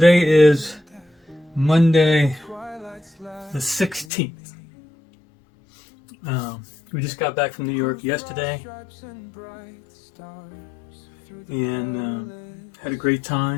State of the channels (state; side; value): drops out; right; at 4.0 s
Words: is Monday the 16th. We just got back from New York yesterday. And had a great